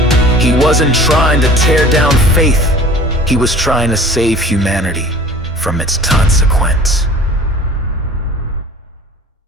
He wasn't trying to tear down faith. He was trying to save humanity from its consequence.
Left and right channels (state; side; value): normal; both; correlation 0.45